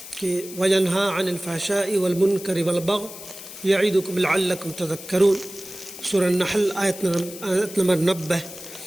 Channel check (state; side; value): noise; left; hiss, 14 dB below the sound